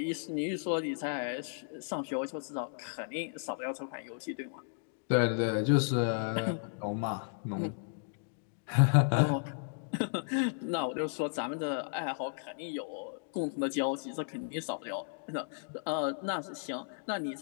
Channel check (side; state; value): right; silent; digital silence